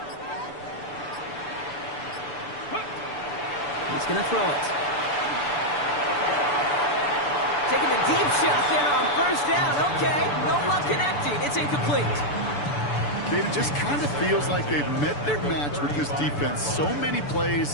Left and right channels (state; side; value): late; right; 6.9 ms